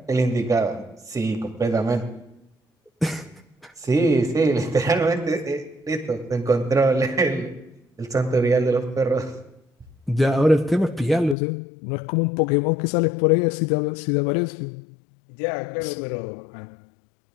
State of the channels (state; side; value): drops out; right; at 11.4 s